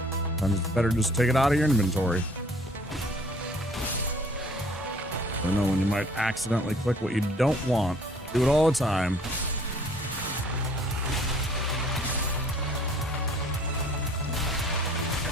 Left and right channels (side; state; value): both; normal; correlation 0.56